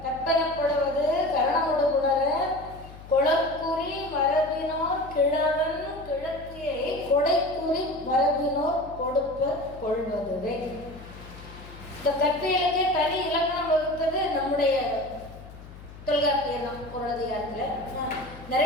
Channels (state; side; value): noise; left; hum, 17 dB below the sound